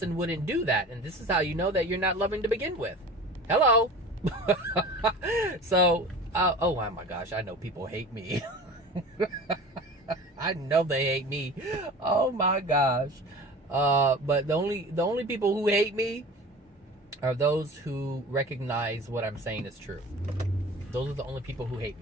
wouldn't do that. And this is how you know that you're not loving to begin with. Hello. So, oh my gosh, I know people hate me. I know they hate me. Oh my gosh. But the only people who hate me are those who recognize what I'm saying is true. Those are the only people who hate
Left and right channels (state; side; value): normal; both; correlation 0.38